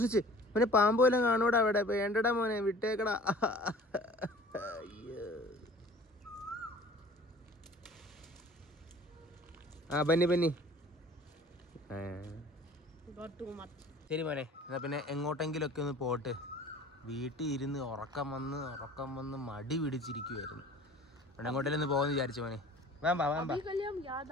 മോനെ പാമ്പ് വല്ലതും കാണൂടാ അവിടെ, വേണ്ടടാ മോനെ, വിട്ടേക്കടാ. ആ ബന്നി ശരി മോനെ. എന്നാ പിന്നെ എങ്ങോട്ടെങ്കിലൊക്കെ ഒന്ന് പോട്ട്. വീട്ടിൽ ഇരുന്ന് ഉറക്കം വന്ന് മടി പിടിച്ചിരിക്കുവായിരുന്നു. അവിടെ എങ്ങോട്ടെങ്കിലും ഒന്ന് പോകുമെന്ന് വിചാരിച്ചു മോനെ.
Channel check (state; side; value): normal; both; correlation 0.47